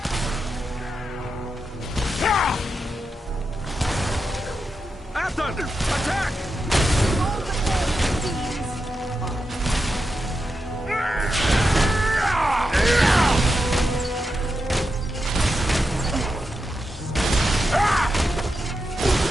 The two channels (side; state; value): both; normal; correlation 0.87